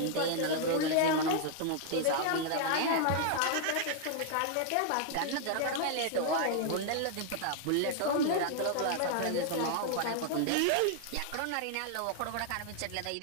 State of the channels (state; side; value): different; both; correlation 0.00